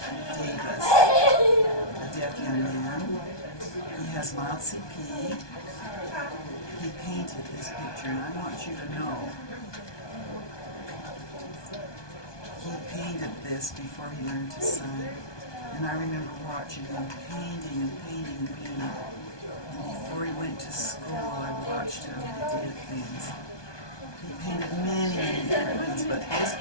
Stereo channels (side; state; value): right; late; 1.2 ms